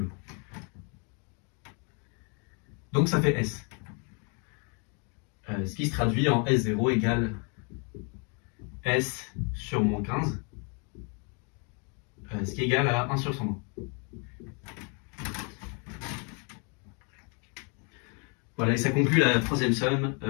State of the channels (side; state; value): right; quieter; 35.8 dB